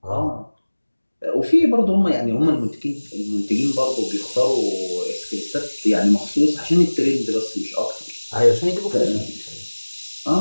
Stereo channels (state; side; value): inverted; both; correlation -1.00